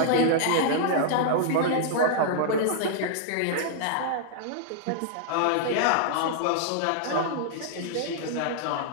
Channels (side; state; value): both; different; correlation -0.01